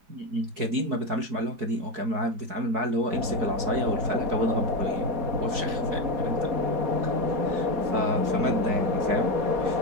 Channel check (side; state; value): left; late; 4.7 ms